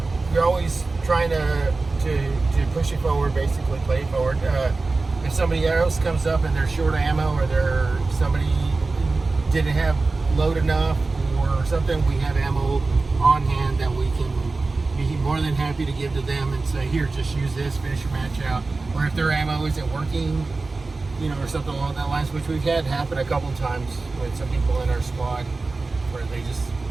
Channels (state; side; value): quieter; left; 3.6 dB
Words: always trying to push it forward, basically play it forward. If somebody else comes up and they're short ammo, or somebody didn't have load enough or something, we have ammo on hand that we can be more than happy to give to them and say, here, just use this, finish your match out. Or if their ammo isn't working, or something along that lines, which we've had happen a couple times with some people in our squad where they just